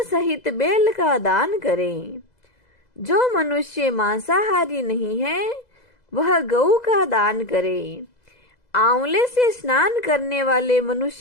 सहित बेल का दान करें। जो मनुष्य मांसाहारी नहीं है वह गऊ का दान करे। आंवले से स्नान करने वाले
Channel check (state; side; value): late; right; 2.0 ms